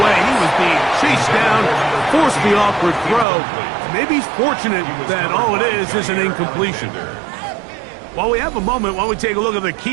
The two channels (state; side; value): drops out; left; at 3.2 s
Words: He was being chased down, forced the awkward throw. Maybe he's fortunate that all it is an incompletion. While we have a moment, while we take a look at the